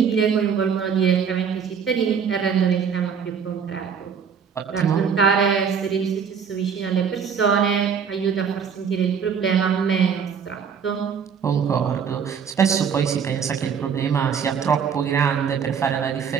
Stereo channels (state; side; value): quieter; left; 6.9 dB